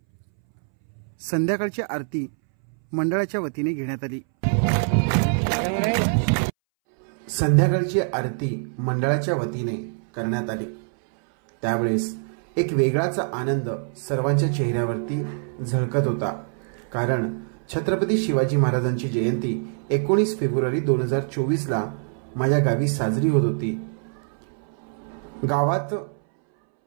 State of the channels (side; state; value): left; silent; 62 dB below the other